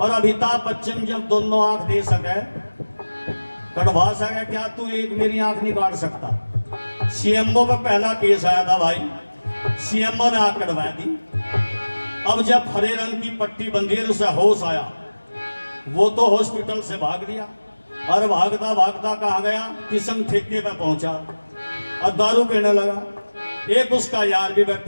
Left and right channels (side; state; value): both; inverted; correlation -1.00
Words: और अमिताभ बच्चन जब दोनों आंख दे सके कटवा सके, क्या तू एक मेरी आंख नहीं काट सकता? सीएमओ पे पहला केस आया था भाई, सीएमओ ने आंख कटवा दी। अब जब हरे रंग की पट्टी बंधी है उसे होश आया, वो तो हॉस्पिटल से भाग लिया और भागता भागता कहाँ गया, किस्म ठेके पे पहुंचा और दारू पीने लगा। एक उसका यार भी